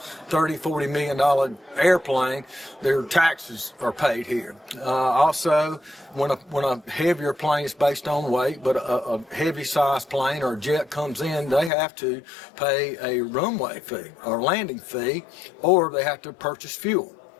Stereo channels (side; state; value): right; drops out; at 11.7 s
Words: $30-40 million airplane, their taxes are paid here. Also, when a heavier plane is based on weight, but a heavy sized plane or a jet comes in, they have to pay a runway fee or landing fee, or they have to purchase fuel,